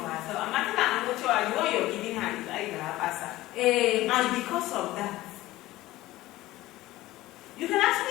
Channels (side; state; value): right; quieter; 17.1 dB